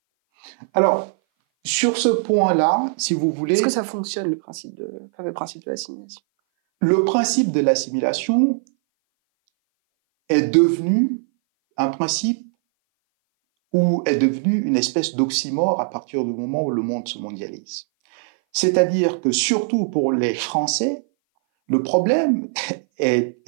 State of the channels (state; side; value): silent; left; 59 dB below the other